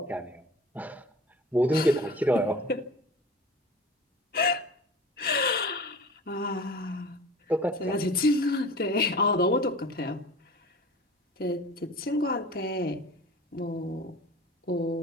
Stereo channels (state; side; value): normal; both; correlation 0.39